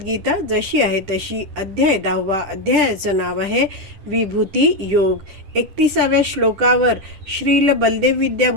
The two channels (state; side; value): late; left; 10 ms